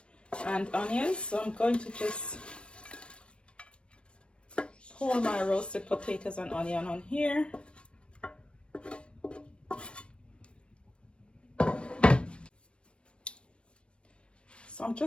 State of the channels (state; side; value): late; right; 0.058 ms